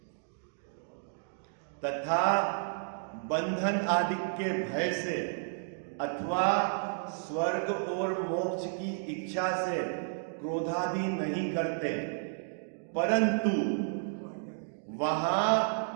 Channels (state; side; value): silent; left; digital silence